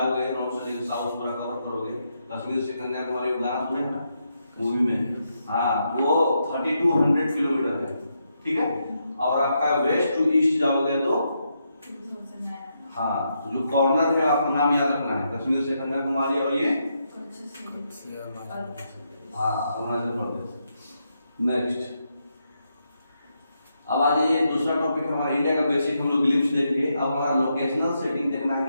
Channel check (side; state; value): both; inverted; correlation -0.81